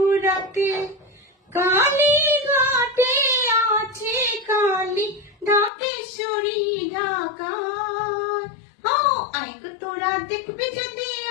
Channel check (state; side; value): drops out; right; at 5.7 s